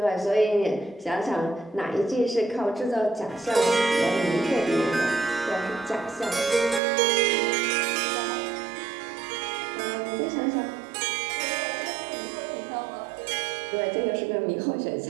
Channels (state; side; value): drops out; left; at 6.8 s